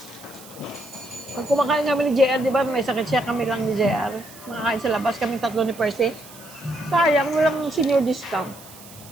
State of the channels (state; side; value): noise; right; hiss, 19 dB below the sound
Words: Pag kumakain kami ni JR, di ba, may sakit siya kami lang ni JR. Makakain sa labas, kami tatlo ni Percy. Sayang, walang senior discount.